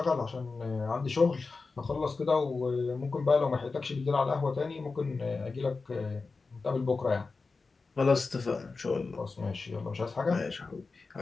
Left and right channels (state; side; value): quieter; right; 4.2 dB